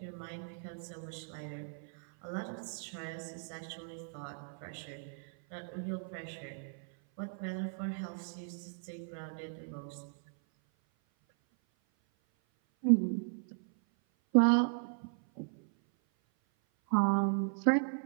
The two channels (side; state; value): left; silent; 53 dB below the other